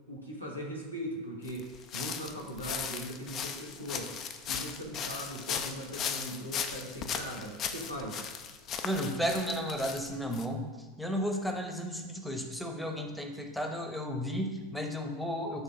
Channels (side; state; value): both; normal; correlation 0.40